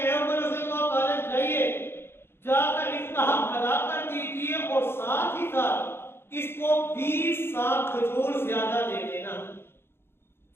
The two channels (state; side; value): late; right; 0.11 ms